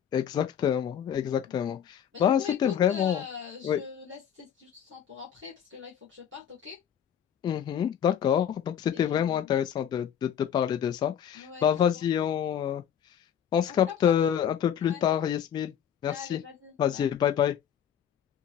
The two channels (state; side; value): quieter; right; 9.0 dB